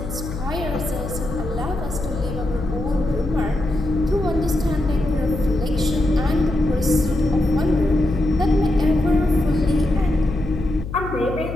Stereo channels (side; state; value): left; noise; hum, 8 dB below the sound